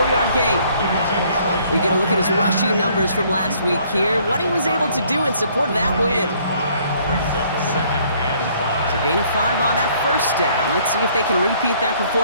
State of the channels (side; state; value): both; inverted; correlation -0.62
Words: gain. We get a look at his rushing numbers from last week here, what he was able to do in support of that win. So gain of 5 on that first down. Let's see if they can repeat that